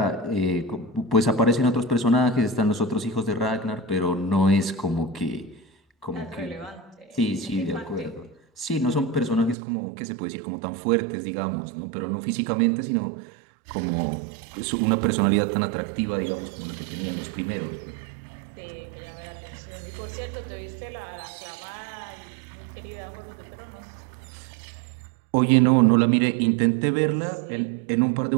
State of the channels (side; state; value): left; drops out; at 9.6 s